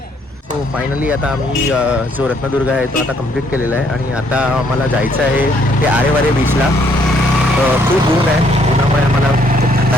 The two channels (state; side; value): normal; both; correlation 0.67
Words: सो फायनली आता आम्ही जो रत्नदुर्ग आहे तो आता कंप्लीट केलेला आहे आणि आता आम्हाला जायचं आहे ते आरेवारे बीचला. खूप ऊन आहे, उन्हामुळे आम्हाला खूप